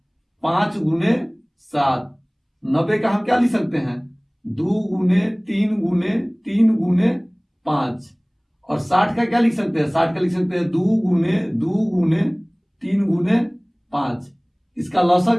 5 गुने 7। 90 का हम क्या लिख सकते हैं, 2 गुने 3 गुने 3 गुने 5। और 60 का क्या लिख सकते हैं, 60 का लिख सकते हैं 2 गुने 2 गुने 3 गुने 5। इसका लौसा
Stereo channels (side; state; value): both; identical; correlation 1.00